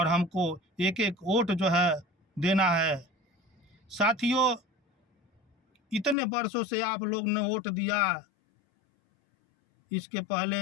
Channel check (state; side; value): drops out; right; at 6.2 s